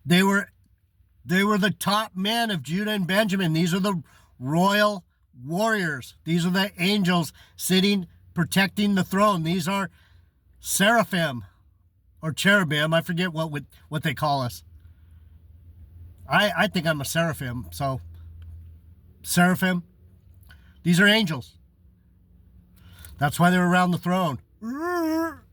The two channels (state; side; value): identical; both; correlation 1.00